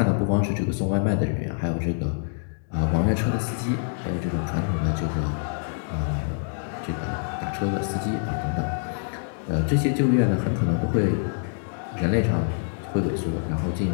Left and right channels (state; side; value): silent; right; digital silence